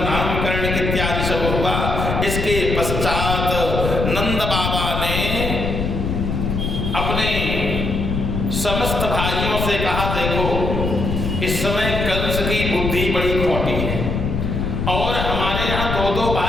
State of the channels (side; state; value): left; noise; rumble, 2 dB below the sound